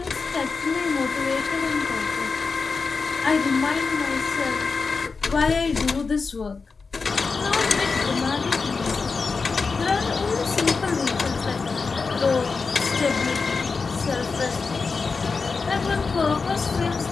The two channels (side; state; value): right; quieter; 4.6 dB